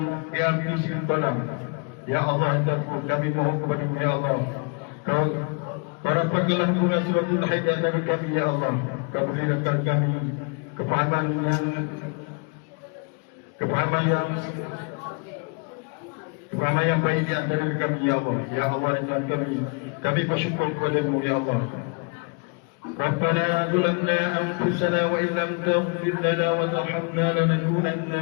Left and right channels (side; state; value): right; quieter; 35.1 dB